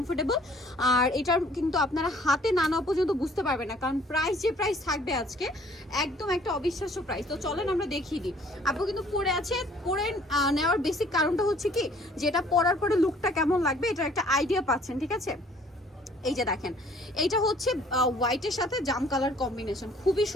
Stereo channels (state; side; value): normal; both; correlation 0.57